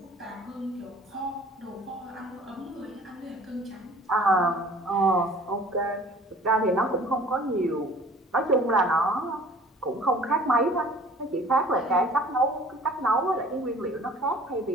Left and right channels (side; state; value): both; normal; correlation 0.49